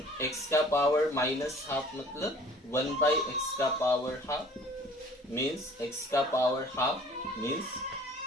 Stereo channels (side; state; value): both; normal; correlation 0.51